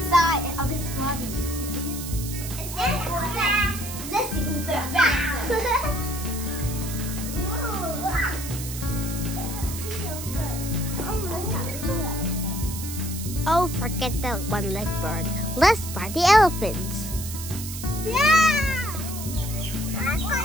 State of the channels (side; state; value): right; noise; hiss, 9 dB below the sound